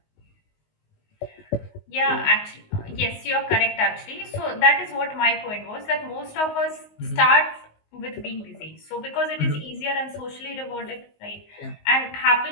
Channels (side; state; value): right; late; 19 ms